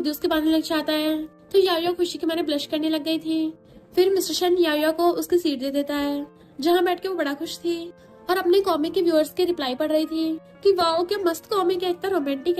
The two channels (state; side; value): identical; both; correlation 1.00